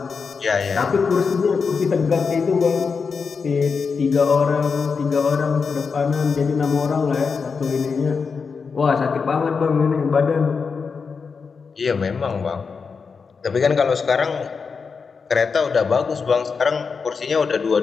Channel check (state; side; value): quieter; right; 5.3 dB